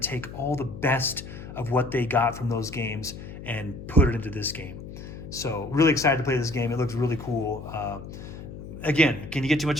take all the best of what they got from those games and put it into this game. So really excited to play this game. It looks really cool. Again, can you get too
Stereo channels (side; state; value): left; noise; hum, 12 dB below the sound